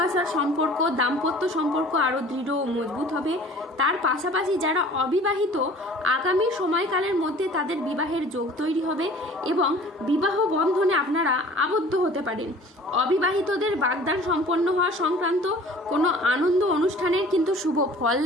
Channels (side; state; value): both; normal; correlation 0.47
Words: সম্পর্ক, দাম্পত্য সম্পর্ক আরও দৃঢ় ও মজবুত হবে। তার পাশাপাশি যারা অবিবাহিত আগামী সময়কালের মধ্যে তাদের বিবাহের যোগ তৈরি হবে এবং বিবাহ বন্ধনে আপনারা আবদ্ধ হতে পারেন। অবিবাহিতদের বাগদান সম্পন্ন হওয়া সংক্রান্ত কোনো আনন্দ অনুষ্ঠানের কিন্তু শুভ ফল